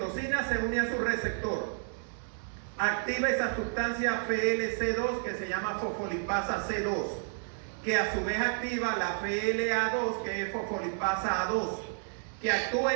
se une a su receptor, activa esa sustancia FLC2 que se llama fosfolipasa C2, que a su vez activa la FLA2, que es fosfolipasa A2, que actúa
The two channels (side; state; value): left; silent; 57 dB below the other